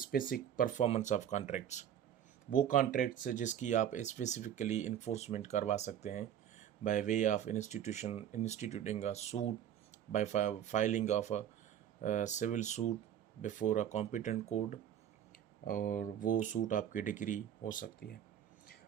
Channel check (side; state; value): left; quieter; 9.9 dB